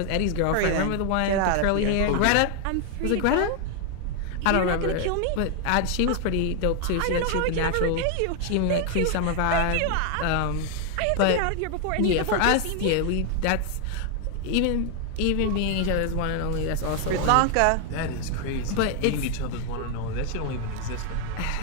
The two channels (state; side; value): different; both; correlation 0.00